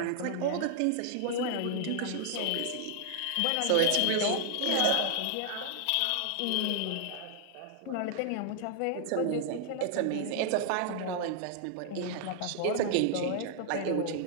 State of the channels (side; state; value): both; different; correlation -0.01